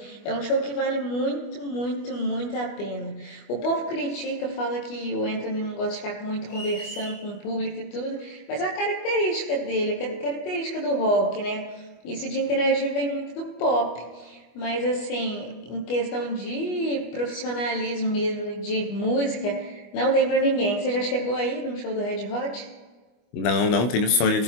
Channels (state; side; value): late; right; 25 ms